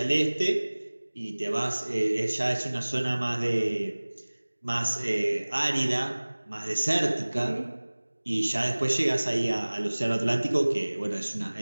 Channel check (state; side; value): inverted; both; correlation -1.00